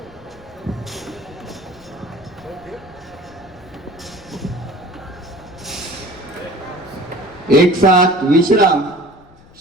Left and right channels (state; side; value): noise; left; rumble, 24 dB below the sound